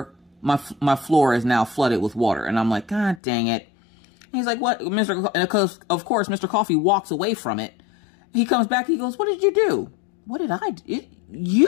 My floor is now flooded with water. And I'm like, God dang it. And he's like, what? And of course, Mr. Coffee walks away from it. He comes back. He goes, what did you do? What did I do?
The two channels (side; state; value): right; drops out; at 3.2 s